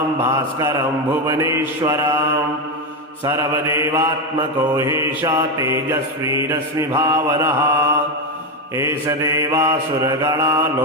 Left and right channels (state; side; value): normal; both; correlation 0.11